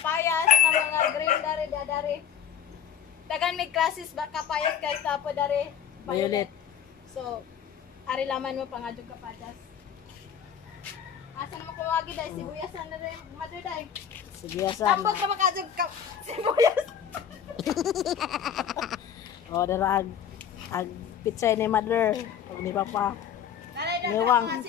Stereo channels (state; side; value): quieter; right; 8.6 dB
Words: na mga green dari. Dagan may classes ba kapayas guys tapo dari. Violet. So, ari laman mo pangadyo kapayas. Asa naman kumagi dahil sibuyasan na rin. Mother dahil. Sibuyasan. Tambok na makadyo sibuyas. O, dara ag pizza ni mother. Pag di pa pa. Dari Mewang. mga